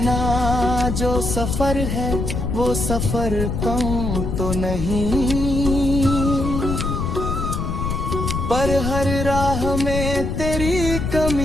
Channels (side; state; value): left; noise; rumble, 2 dB below the sound